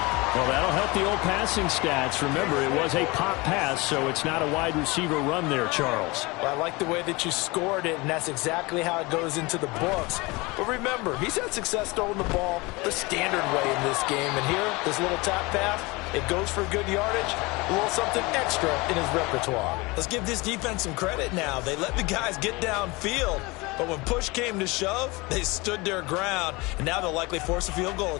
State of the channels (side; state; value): right; quieter; 24.3 dB